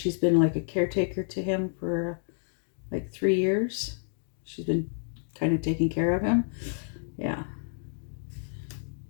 been like a caretaker to him for like 3 years. She's been kind of taking care of him. Yeah.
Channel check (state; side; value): silent; right; digital silence